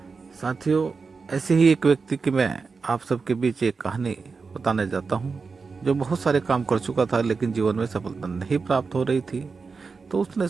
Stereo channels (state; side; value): quieter; left; 4.7 dB